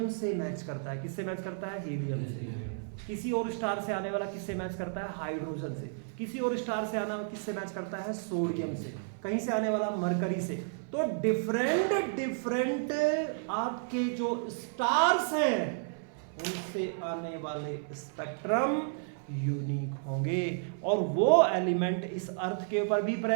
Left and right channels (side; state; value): left; silent; 56 dB below the other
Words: से मैच करता है। किससे मैच करता है? हीलियम से। किसी और स्टार से आने वाला किससे मैच करता है? हाइड्रोजन से। किसी और स्टार से आना किससे मैच करता है? सोडियम से। कहीं से आने वाला मरकरी से। तो डिफरेंट आपके जो स्टार्स हैं उनसे आने वाले स्पेक्ट्रम यूनिक होंगे, और वो एलिमेंट इस अर्थ के ऊपर भी